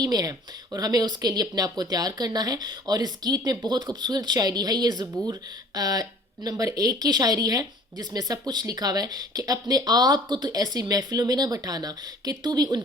میں ہے، اور ہمیں اس کے لیے اپنے آپ کو تیار کرنا ہے۔ اور اس گیت میں بہت خوبصورت شاعری ہے، یہ زبور نمبر 1 کی شاعری ہے، جس میں سب کچھ لکھا ہوا ہے کہ اپنے آپ کو تو ایسی محفلوں میں نہ بٹھانا کہ تو بھی ان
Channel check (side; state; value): both; normal; correlation 0.49